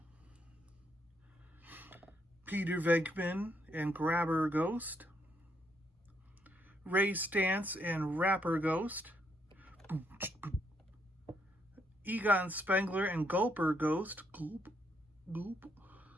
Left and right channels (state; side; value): normal; both; correlation 0.75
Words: Peter Venkman and Grabber Ghost. Ray Stantz and Rapper Ghost. Egon Spengler and Gulper Ghost. Gulp, gulp.